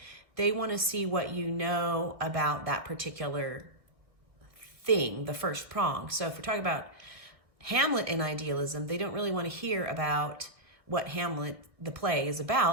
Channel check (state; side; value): late; left; 1.6 ms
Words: They want to see what you know about that particular thing, the first prong. So if we're talking about Hamlet and idealism, they don't really want to hear about what Hamlet, the play, is